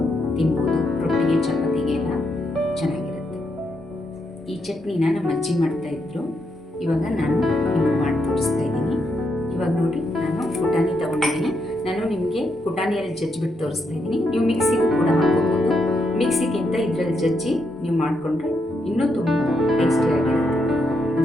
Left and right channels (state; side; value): normal; both; correlation 0.80